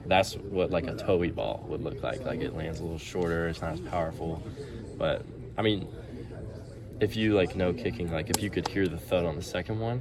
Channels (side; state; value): both; identical; correlation 1.00